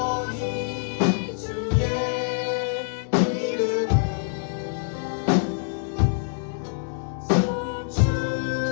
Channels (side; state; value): right; silent; digital silence